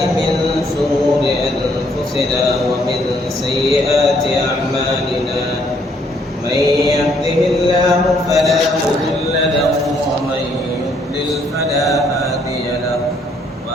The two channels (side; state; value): both; normal; correlation 0.68